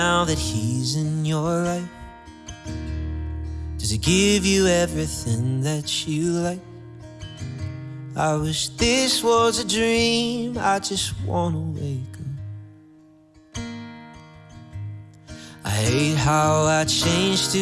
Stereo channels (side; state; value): both; identical; correlation 1.00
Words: that he's in your life? Does he give you everything that you like? I wish this was a dream, I just wanna wake up. I hate how I changed